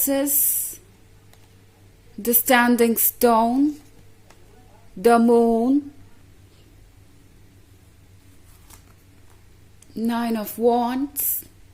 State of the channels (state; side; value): identical; both; correlation 1.00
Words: the Standing Stone, the Moon, Nine of Wands,